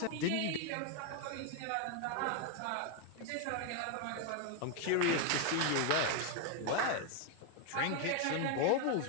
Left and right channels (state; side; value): different; both; correlation 0.01